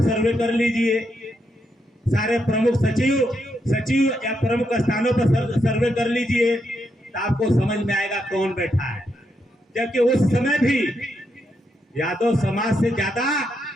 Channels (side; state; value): both; normal; correlation 0.81